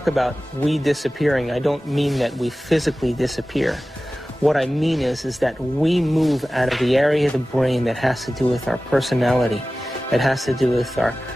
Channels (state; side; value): normal; both; correlation 0.96